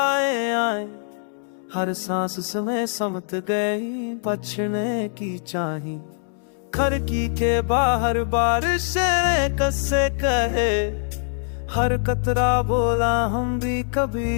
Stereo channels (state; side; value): silent; right; 63 dB below the other